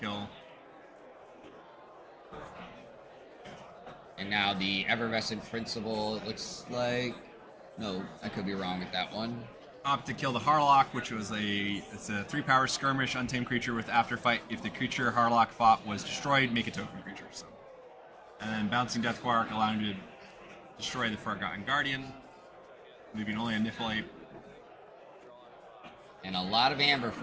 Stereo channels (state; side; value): identical; both; correlation 1.00